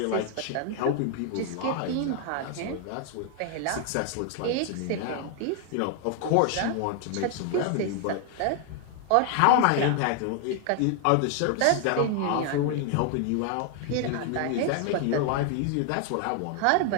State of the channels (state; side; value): different; both; correlation 0.00